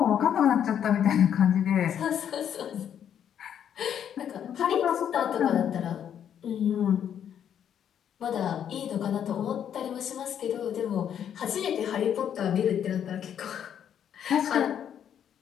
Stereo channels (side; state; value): right; quieter; 9.2 dB